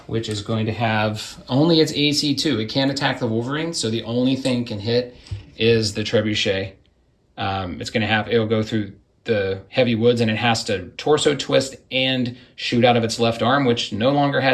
which is going to have only its AC2. It can't attack the Wolverine, so the only thing it can hit is the Trebuchet. It'll go through the heavy woods, and it has to torso twist and shoot out of its left arm, which no longer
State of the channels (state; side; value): identical; both; correlation 1.00